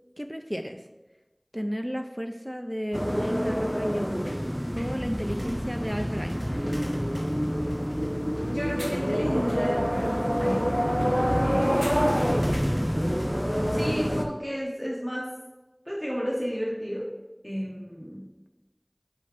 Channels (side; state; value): both; identical; correlation 1.00